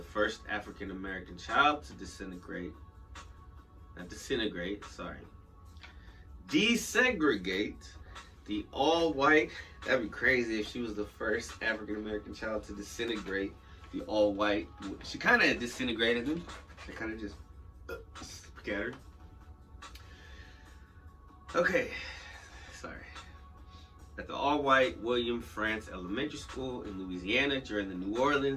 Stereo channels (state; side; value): identical; both; correlation 1.00